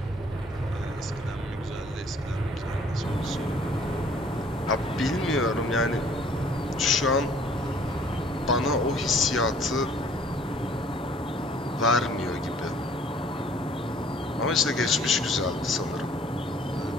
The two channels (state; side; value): normal; both; correlation 0.56